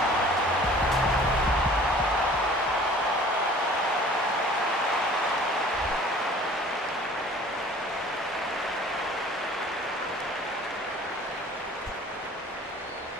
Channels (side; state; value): both; normal; correlation 0.48